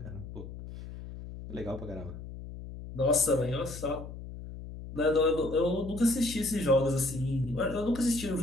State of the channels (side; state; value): left; noise; hum, 11 dB below the sound